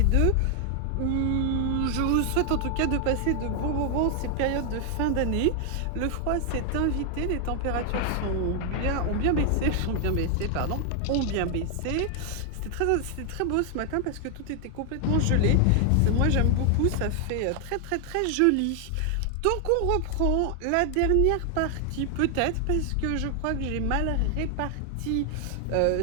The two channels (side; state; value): both; different; correlation 0.00